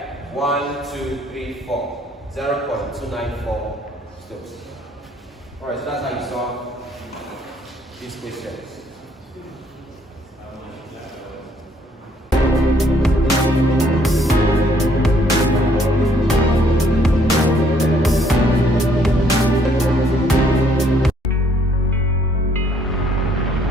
1, 2, 3, 4. 0.294 Stokes. Alright, so that's how you solve these questions.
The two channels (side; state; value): both; normal; correlation 0.65